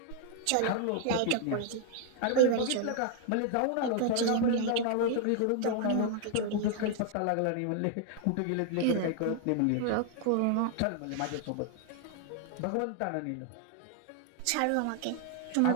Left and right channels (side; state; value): both; different; correlation 0.00